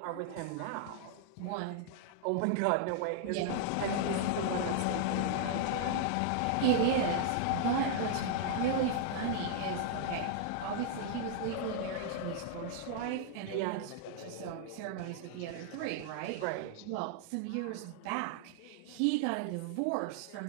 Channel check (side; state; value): both; different; correlation -0.01